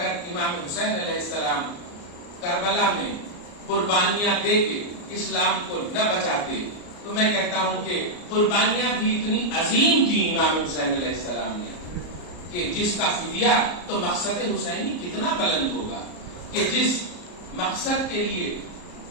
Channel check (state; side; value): late; right; 34 ms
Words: امام حسین علیہ السلام کربلا میں قربانیاں دے کے اسلام کو نہ بچاتے تو میں کہتا ہوں کہ قربانیاں بھی اتنی عظیم تھی امام حسین علیہ السلام نے کہ جس کا فدیہ تو مقصد حسینی کتنا بلند ہوگا کہ جس مقصد کے لیے